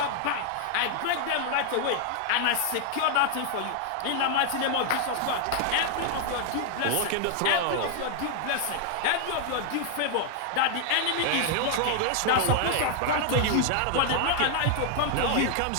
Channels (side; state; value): both; different; correlation 0.00